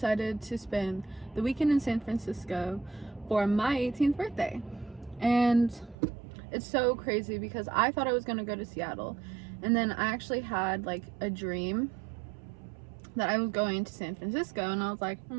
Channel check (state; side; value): drops out; left; at 6.0 s